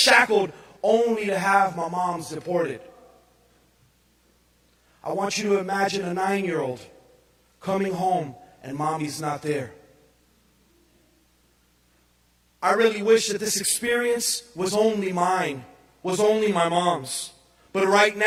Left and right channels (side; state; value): both; identical; correlation 1.00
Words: only to have my mom's deported. I want you to imagine a 9-year-old coming home and mommy's not there. I really wish that this experience was only mine, was only my mom's. But right